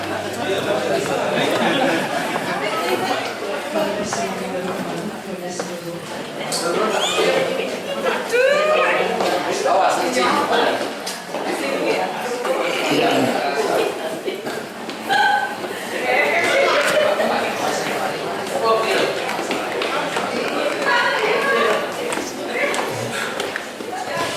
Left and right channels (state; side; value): identical; both; correlation 1.00